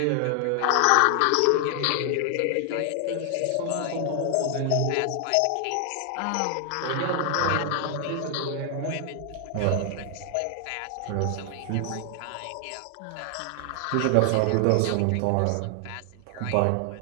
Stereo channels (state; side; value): different; both; correlation 0.00